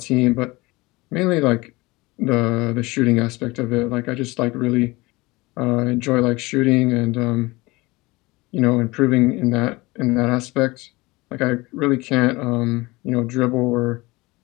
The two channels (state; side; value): quieter; right; 22.4 dB